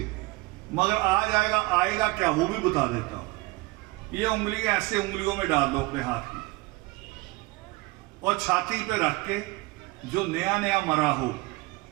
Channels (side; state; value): left; quieter; 22.5 dB